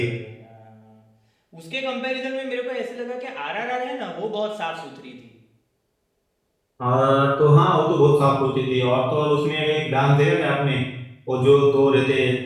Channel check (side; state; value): both; identical; correlation 1.00